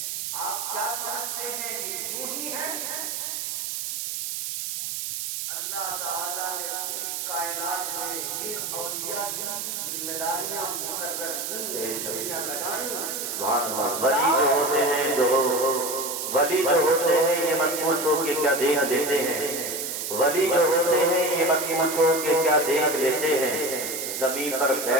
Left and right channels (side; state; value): right; noise; hiss, 4 dB below the sound